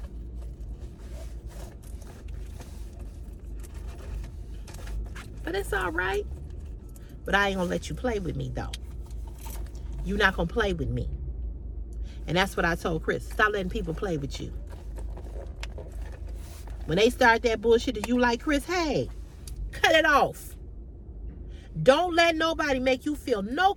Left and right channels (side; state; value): both; identical; correlation 1.00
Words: But it's all right. But I ain't gonna let you play with me though. You're not gonna play with me. And that's what I told Chris. Stop letting people play with you. When they start that bullshit that you like, Chris, hey, cut it off. Don't let nobody make you feel no